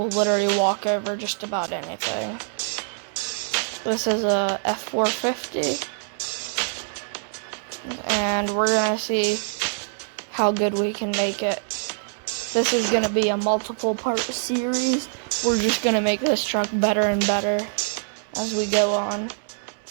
literally walk over just about anything. This is a F450, and we're gonna see how good we can make it. This is gonna be a multiple part series. We're just gonna make this truck better and better as we go on.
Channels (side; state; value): left; silent; digital silence